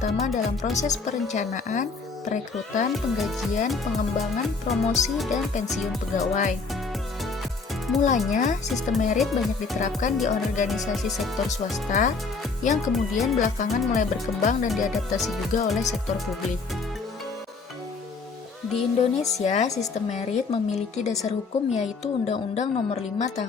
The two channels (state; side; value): quieter; right; 4.5 dB